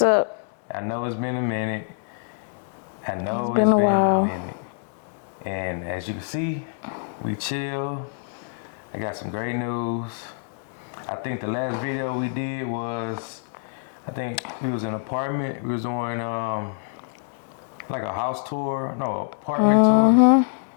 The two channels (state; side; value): silent; right; digital silence